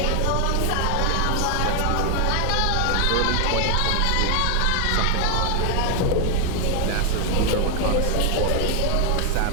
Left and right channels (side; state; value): both; different; correlation 0.00